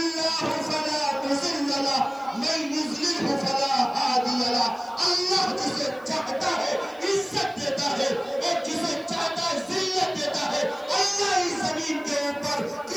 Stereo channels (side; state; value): right; noise; hiss, 29 dB below the sound